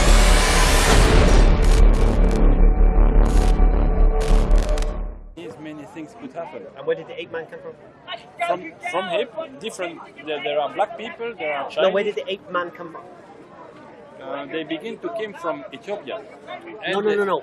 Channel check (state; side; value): identical; both; correlation 1.00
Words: Many things could happen. And where did the ape man come from? From him, different. There are black people. There are Chinese. No, where did the ape man come from? They begin to come from Ethiopia. No.